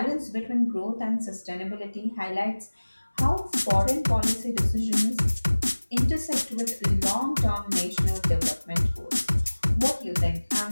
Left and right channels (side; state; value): both; inverted; correlation -1.00